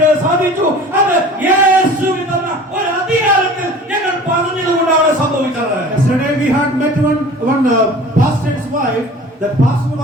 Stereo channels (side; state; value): both; normal; correlation 0.43